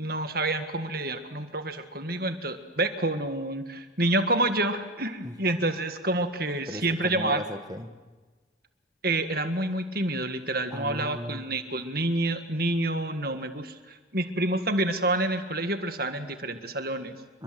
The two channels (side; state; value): both; normal; correlation 0.27